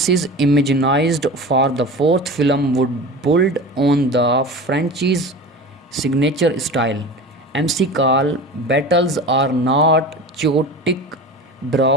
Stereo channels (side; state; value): both; normal; correlation 0.33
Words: imagined for the fourth film would build on the franchise's signature style. MC Call battles are not chaotic